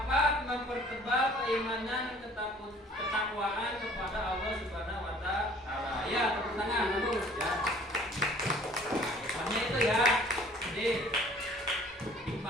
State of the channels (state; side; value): normal; both; correlation 0.53